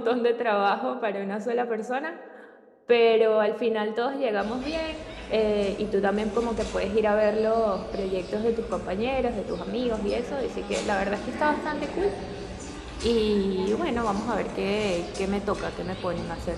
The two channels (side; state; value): both; identical; correlation 1.00